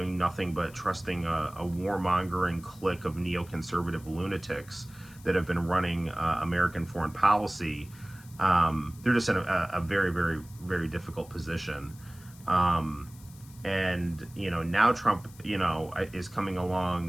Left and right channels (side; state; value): left; noise; hiss, 23 dB below the sound